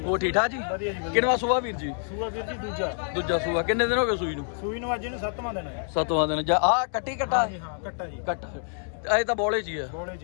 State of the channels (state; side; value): silent; right; digital silence